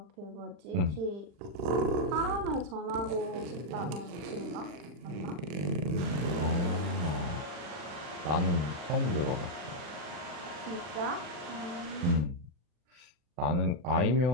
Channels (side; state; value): left; late; 40 ms